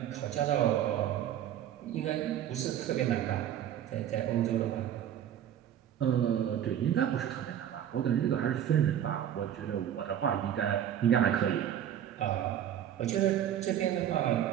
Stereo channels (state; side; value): quieter; left; 10.4 dB